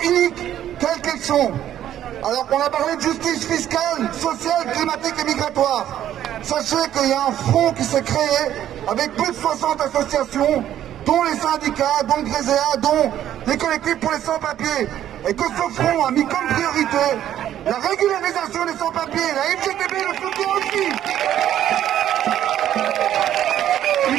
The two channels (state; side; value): quieter; left; 11.4 dB